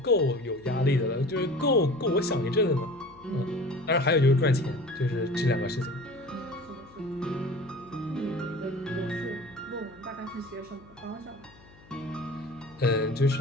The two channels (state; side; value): noise; left; hum, 24 dB below the sound